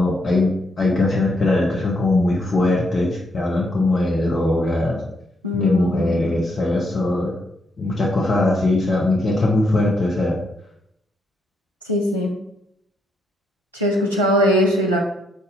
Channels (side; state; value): both; normal; correlation 0.76